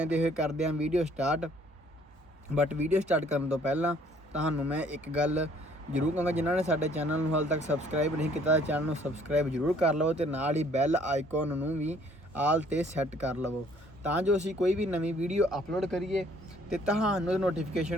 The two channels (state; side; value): normal; both; correlation 0.60